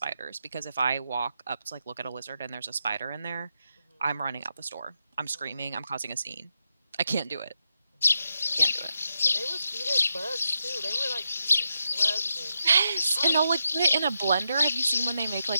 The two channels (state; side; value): inverted; both; correlation -0.85